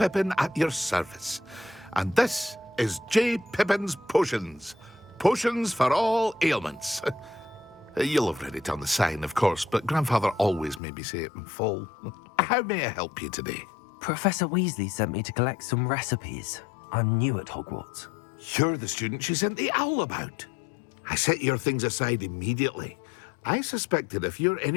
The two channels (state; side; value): drops out; right; at 10.8 s